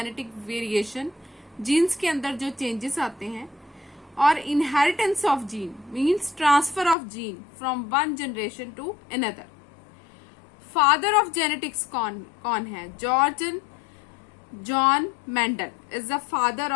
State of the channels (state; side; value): drops out; right; at 7.0 s